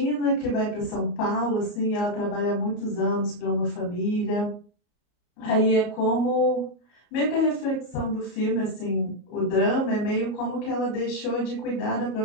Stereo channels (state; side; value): late; right; 34 ms